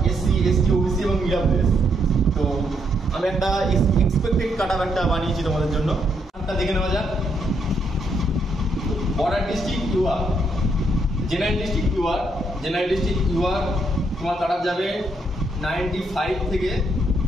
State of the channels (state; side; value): normal; both; correlation 0.75